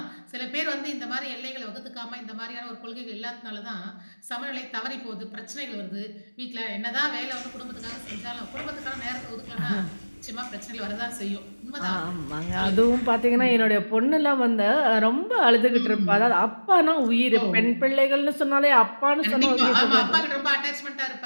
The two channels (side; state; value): both; inverted; correlation -1.00